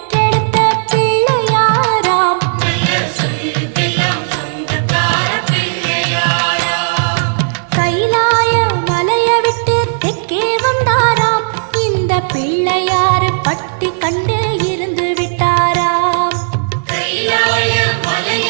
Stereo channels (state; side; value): silent; left; digital silence